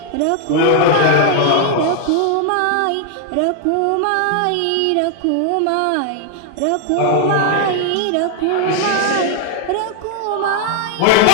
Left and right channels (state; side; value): different; both; correlation 0.00